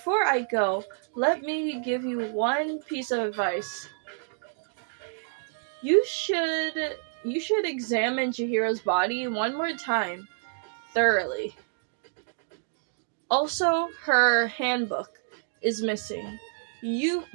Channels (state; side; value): silent; left; digital silence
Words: I go, let me give you one piece of advice. You should examine Chihiro's body one more time, thoroughly. Also, her handbook is missing. You